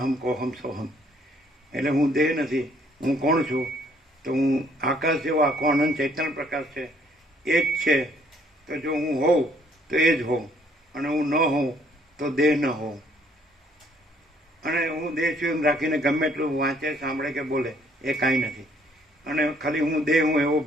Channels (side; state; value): both; normal; correlation 0.64